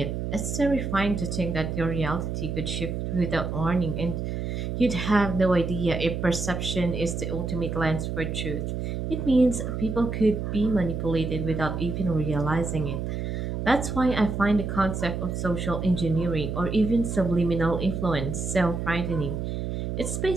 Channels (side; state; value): right; noise; hum, 3 dB below the sound